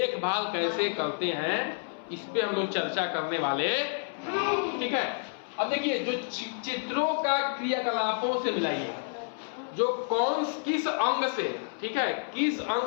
कैसे करते हैं इस पे हम लोग चर्चा करने वाले, ठीक है। अब देखिए जो चित्रों का क्रियाकलापों से मिलाइए, जो किस अंग से, ठीक है, किस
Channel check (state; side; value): silent; right; 58 dB below the other